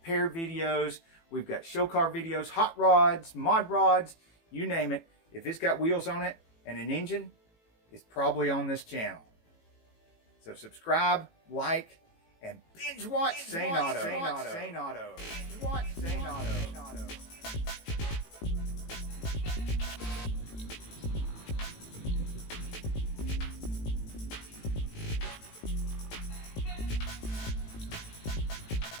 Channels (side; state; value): right; late; 18 ms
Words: videos, we've got show car videos, hot rods, mod rods, you name it. If it's got wheels on it and an engine, it's probably on this channel. So subscribe, like, and binge watch Sane Auto. Binge watch Sane Auto.